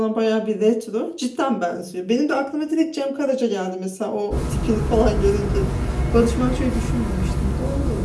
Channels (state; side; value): identical; both; correlation 1.00